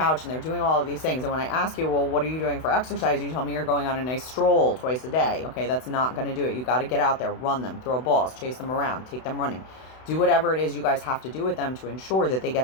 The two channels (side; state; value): right; late; 32 ms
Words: and they're doing all of these things. And when I ask you, well, what are you doing for exercise? You tell me you're going on a nice stroll twice a day. Okay, that's not going to do it. You got to get out there, run them, throw balls, chase them around, take them running. Do whatever it is you guys have to do with them to ensure that they